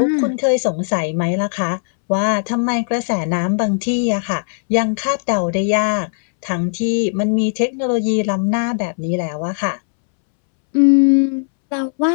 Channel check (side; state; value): right; silent; 67 dB below the other